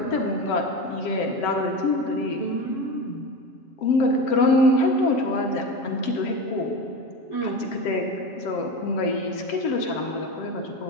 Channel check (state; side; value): late; right; 7.4 ms